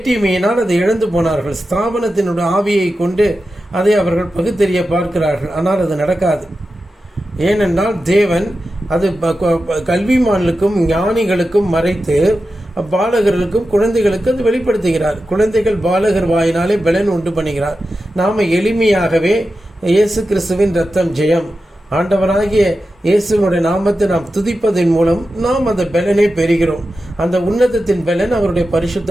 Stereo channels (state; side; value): normal; both; correlation 0.92